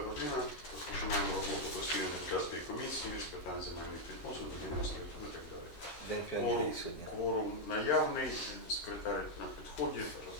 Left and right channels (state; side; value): late; right; 13 ms